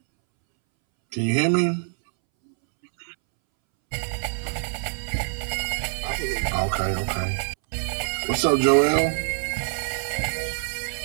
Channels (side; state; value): left; silent; 62 dB below the other